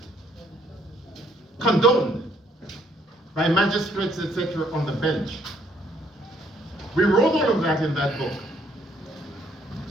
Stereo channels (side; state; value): both; normal; correlation 0.67